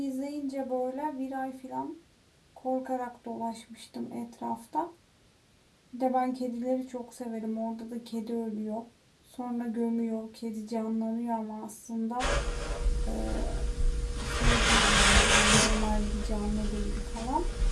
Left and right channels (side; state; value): both; identical; correlation 1.00